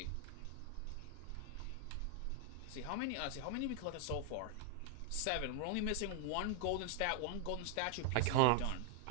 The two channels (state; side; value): different; both; correlation 0.00